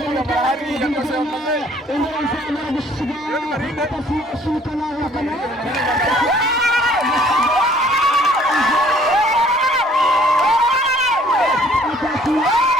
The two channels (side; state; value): both; normal; correlation 0.58